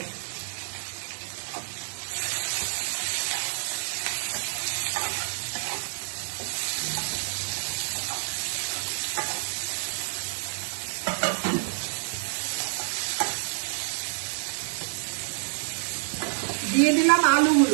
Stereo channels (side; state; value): left; silent; digital silence